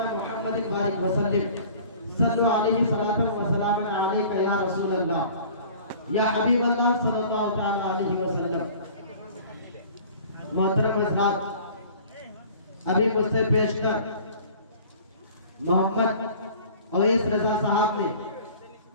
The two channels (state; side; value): inverted; both; correlation -0.47